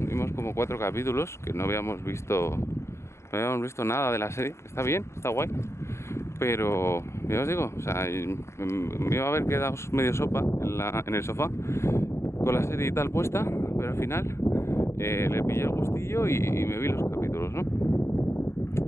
como 4 capítulos, que no habíamos visto nada de la serie. Está bien, está guay. Pero, ya os digo, o sea, me iba a haber quedado medio sopa en el sofá con la serie y tal puesta, pero al final le pillé el gustillo y me vi los capítulos, ¿no?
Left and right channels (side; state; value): right; late; 0.13 ms